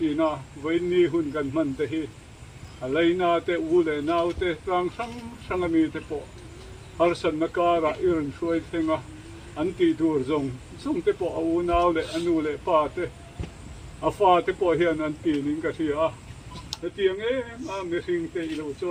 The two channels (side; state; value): both; identical; correlation 1.00